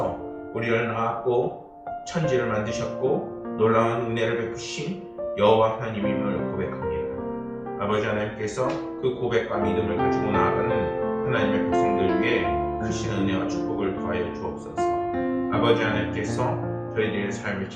우리를 낳았고 천지를 만드셨고 놀라운 은혜를 베푸신 여호와 하나님임을 고백합니다. 아버지 하나님께서 그 고백과 믿음을 가지고 나아가는 하나님의 백성들 위해 크신 은혜와 축복을 더하여 주옵소서. 아버지 하나님께서 저희들의 삶을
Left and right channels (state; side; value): identical; both; correlation 1.00